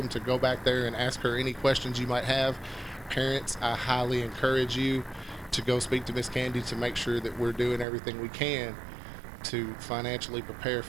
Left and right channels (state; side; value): drops out; left; at 7.9 s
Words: to go back there and ask her any questions you might have. Parents, I highly encourage you to go speak to Miss Candy to make sure that we're doing everything we can to financially prepare